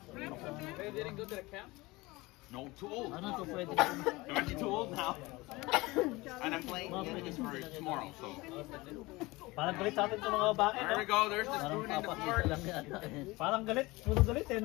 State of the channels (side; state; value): right; quieter; 21.9 dB